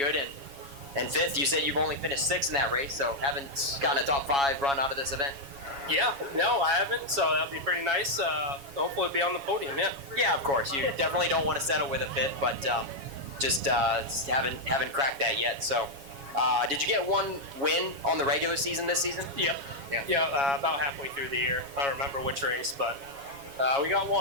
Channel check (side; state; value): left; late; 7.2 ms